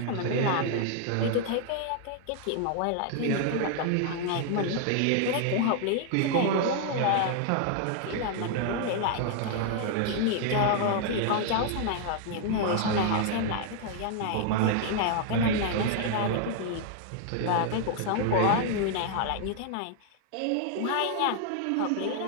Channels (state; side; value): different; both; correlation 0.00